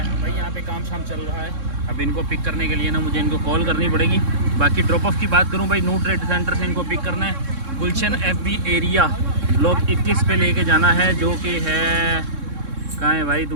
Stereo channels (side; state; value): left; late; 3.6 ms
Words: है भाई, यहाँ पे काम शाम चल रहा है। अब इनको पिक करने के लिए ना मुझे इनको कॉल करनी पड़ेगी। बाकी ड्रॉप ऑफ की बात करूँ भाई, नू ट्रेड सेंटर से इनको पिक करना है। गुलशन FB एरिया ब्लॉक 21 पे लेके जाना है, जो कि है कहाँ है भाई